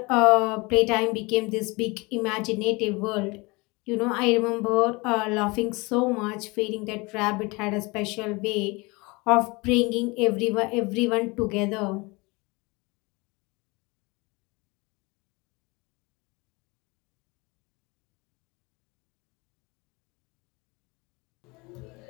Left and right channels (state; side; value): quieter; right; 25.6 dB